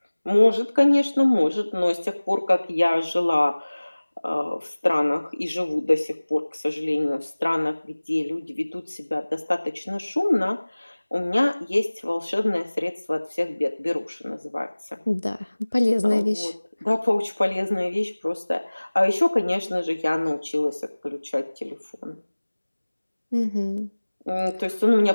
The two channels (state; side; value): inverted; both; correlation -1.00